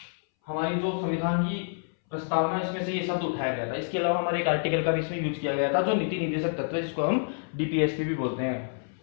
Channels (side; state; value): right; silent; 59 dB below the other